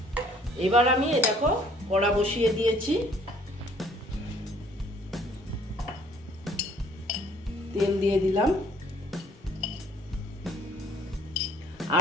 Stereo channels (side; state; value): both; normal; correlation 0.59